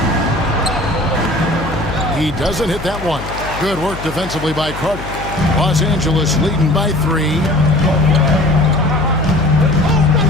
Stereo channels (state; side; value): noise; left; hum, 11 dB below the sound